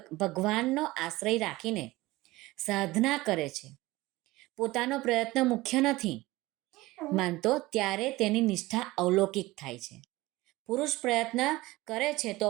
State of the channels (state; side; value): quieter; left; 19.5 dB